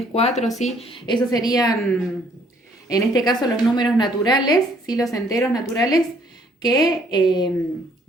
4, ¿sí? Esos serían, en este caso, los números naturales, ¿sí? Los enteros naturales que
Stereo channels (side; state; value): both; normal; correlation 0.63